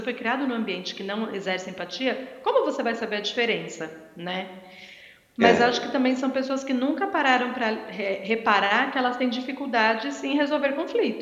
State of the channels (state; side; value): identical; both; correlation 1.00